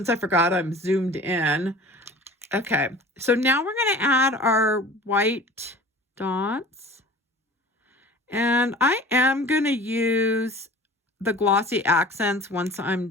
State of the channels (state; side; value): normal; both; correlation 0.42